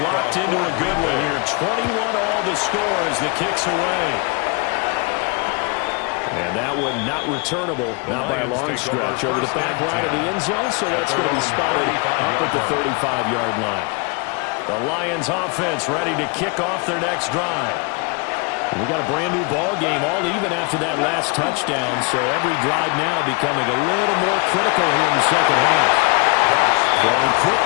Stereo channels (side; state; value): right; quieter; 30.7 dB